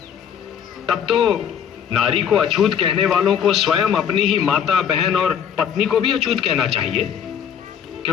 तब तो नारी को अछूत कहने वालों को स्वयं अपनी ही माता, बहन और पत्नी को भी अछूत कहना चाहिए,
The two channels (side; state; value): right; quieter; 8.3 dB